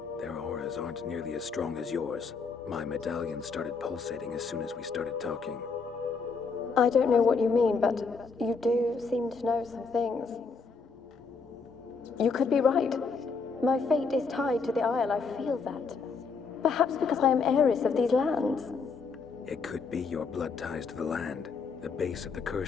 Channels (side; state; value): right; quieter; 4.8 dB